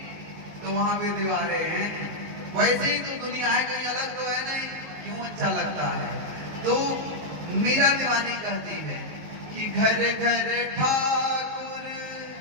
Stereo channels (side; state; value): left; late; 19 ms